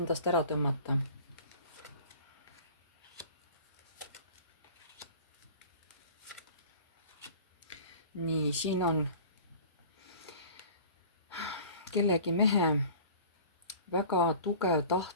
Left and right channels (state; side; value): inverted; both; correlation -0.43